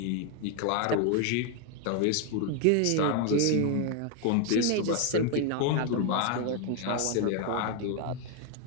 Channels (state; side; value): different; both; correlation 0.01